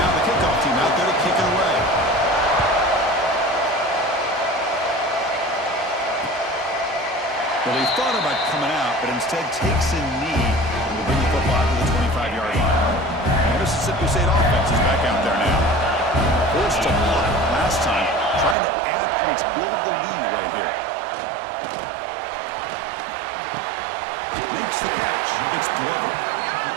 the kickoff team out there to kick it away. Well, he thought about coming out, but instead takes a knee and will bring the football to the 25-yard line. Mississippi State offense is back out there now. Forced to punt last time, trying to add points, build the lead right here. Makes the catch. It's Glover.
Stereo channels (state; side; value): drops out; left; at 18.6 s